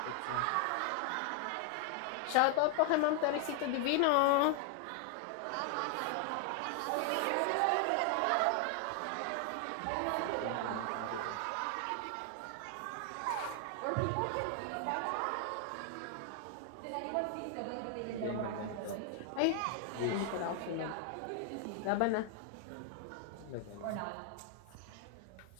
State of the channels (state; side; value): different; both; correlation 0.00